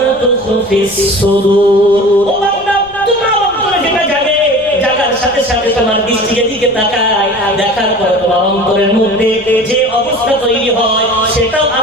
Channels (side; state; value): left; noise; rumble, 23 dB below the sound